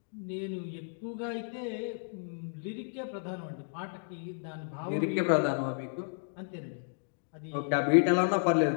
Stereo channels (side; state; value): right; silent; digital silence